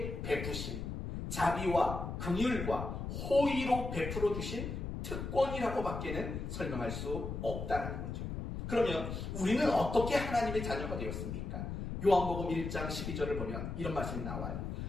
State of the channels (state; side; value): noise; left; rumble, 5 dB below the sound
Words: 베푸신 자비와 긍휼과 호의로 베풀어 주신 특권이라고 밖에는 설명할 수 없다는 거죠. 그러면 우리는 어떻게 하나님의 자녀가 되었습니까? 요한복음 1장 12절을 보면 이런 말씀이 나와요.